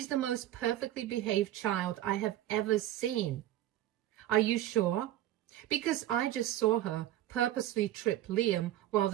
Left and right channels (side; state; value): left; quieter; 13.4 dB